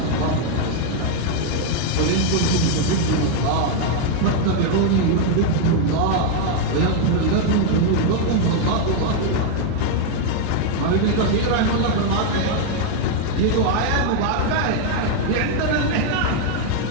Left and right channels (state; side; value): different; both; correlation 0.00